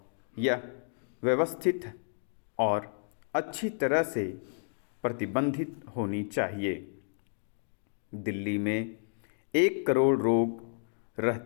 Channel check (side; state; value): right; silent; digital silence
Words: यह व्यवस्थित और अच्छी तरह से प्रबंधित होनी चाहिए। दिल्ली में 1 करोड़ लोग